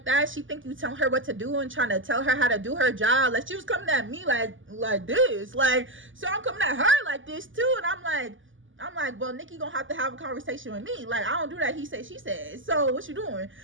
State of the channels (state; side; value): late; left; 0.57 ms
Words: that, she think you telling her what to do and trying to tell her how to do her job. Like, she was coming at me like this. Like, so I'm coming at her like this too. And I'm like, well, Nikki gonna have to have a conversation with me. Like, I don't do that. He said, she said. So what you doing?